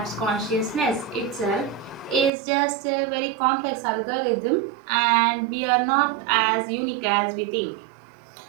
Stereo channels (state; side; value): drops out; left; at 2.3 s